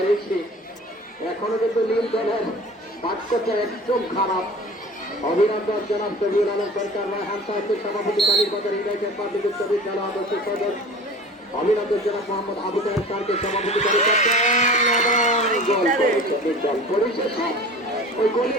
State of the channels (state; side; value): normal; both; correlation 0.40